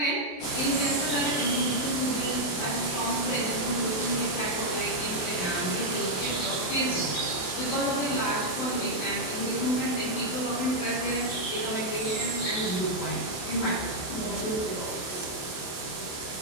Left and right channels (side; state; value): right; late; 28 ms